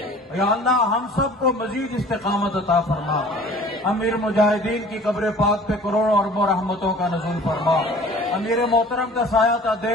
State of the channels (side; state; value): both; normal; correlation 0.47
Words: یا اللہ ہم سب کو مزید استقامت عطا فرما. امیر مجاہدین کی قبر پاک پہ کروڑوں اربوں رحمتوں کا نزول فرما. امیر محترم کا سایہ تا